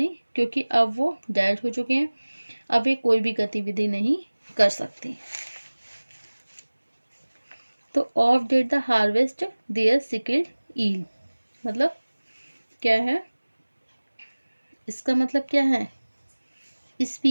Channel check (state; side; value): inverted; both; correlation -1.00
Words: क्योंकि अब वो डेड हो चुके हैं, अब वे कोई भी गतिविधि नहीं कर सकते। तो oft did the harvest their sickle yield, मतलब क्या है, इसका मतलब क्या है,